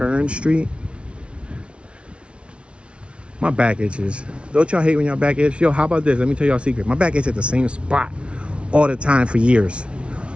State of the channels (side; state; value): left; late; 0.059 ms